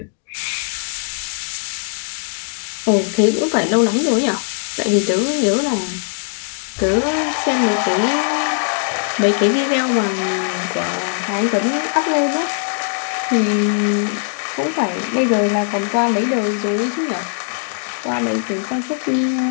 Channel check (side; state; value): right; silent; 66 dB below the other